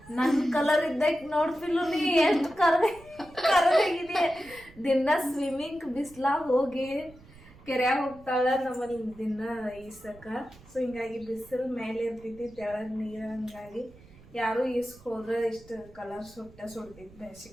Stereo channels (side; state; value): right; noise; rumble, 23 dB below the sound